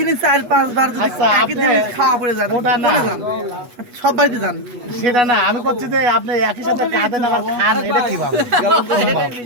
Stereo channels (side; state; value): left; late; 8.2 ms